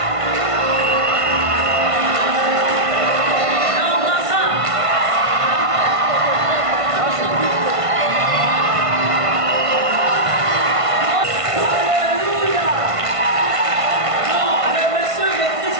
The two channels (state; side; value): late; left; 1.5 ms